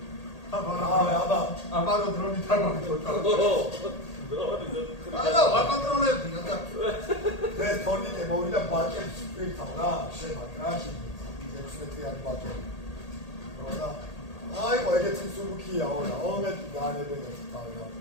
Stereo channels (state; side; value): late; right; 1.8 ms